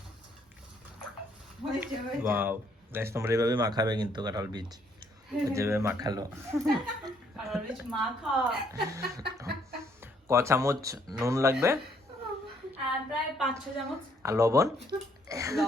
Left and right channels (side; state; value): both; normal; correlation 0.68